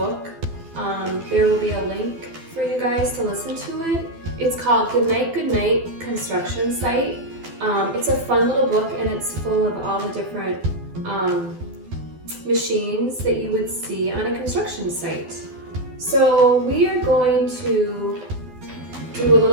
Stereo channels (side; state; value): left; late; 12 ms